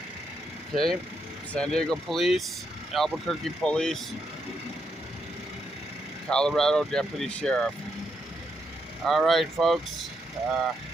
Okay, San Diego Police, Albuquerque Police, Colorado Deputy Sheriff. All right, folks.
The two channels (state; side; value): normal; both; correlation 0.80